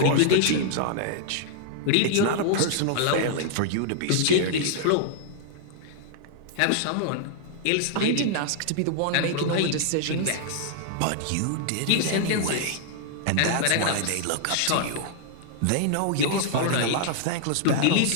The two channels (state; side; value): different; both; correlation -0.01